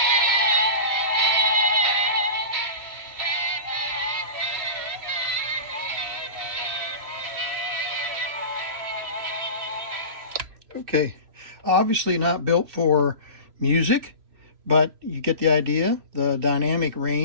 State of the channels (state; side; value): late; left; 3.0 ms